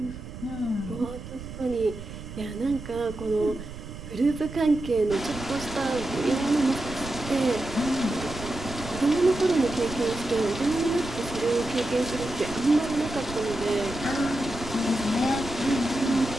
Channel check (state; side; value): noise; right; rumble, 11 dB below the sound